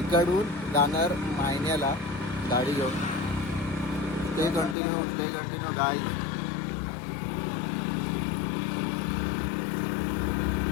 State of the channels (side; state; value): right; drops out; at 4.8 s